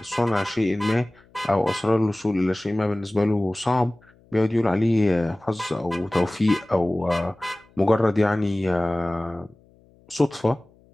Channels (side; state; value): left; noise; hum, 30 dB below the sound